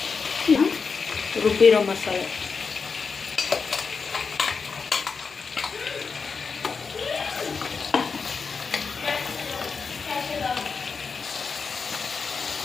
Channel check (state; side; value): quieter; right; 5.2 dB